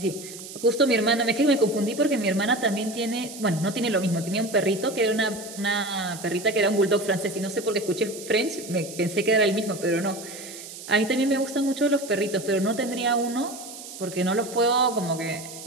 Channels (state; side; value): noise; right; hiss, 13 dB below the sound